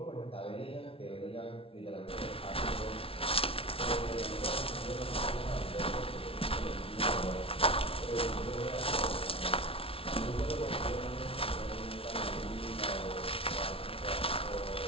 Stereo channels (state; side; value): late; right; 0.26 ms